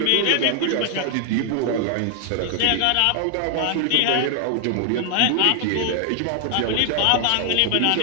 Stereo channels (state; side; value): different; both; correlation 0.00